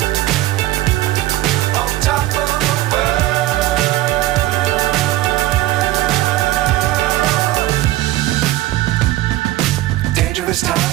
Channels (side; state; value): left; quieter; 16.1 dB